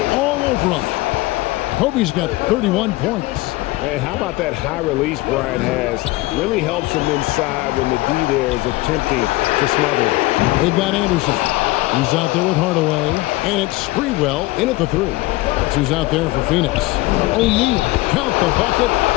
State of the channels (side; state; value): right; quieter; 20.0 dB